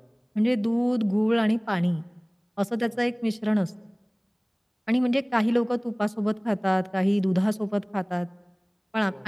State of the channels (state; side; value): identical; both; correlation 1.00